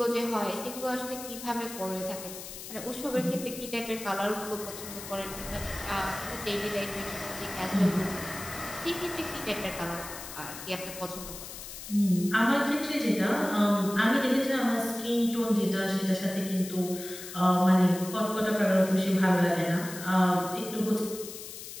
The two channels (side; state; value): left; noise; hiss, 11 dB below the sound